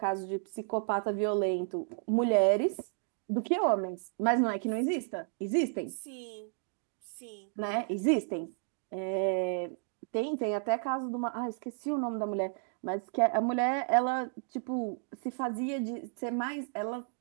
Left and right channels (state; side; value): silent; left; 56 dB below the other